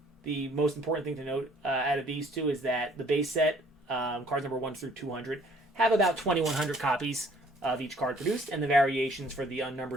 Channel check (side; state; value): both; normal; correlation 0.58